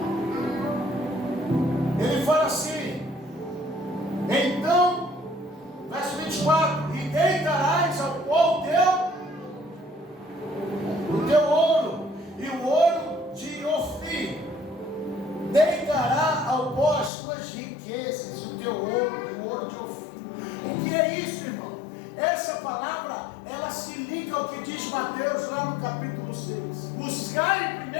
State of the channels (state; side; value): drops out; right; at 17.1 s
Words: ele fala assim, então, verso 24, e deitarás ao pó o teu ouro, e o ouro de Ofir, deitará ao pó as tuas riquezas, e o teu ouro, e o ouro de Ofir. O que é isso, irmão? Essa palavra, ela se liga ao que diz Mateus lá no capítulo 6. Buscar em